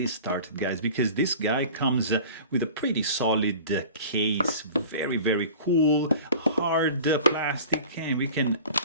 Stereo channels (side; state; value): both; inverted; correlation -0.41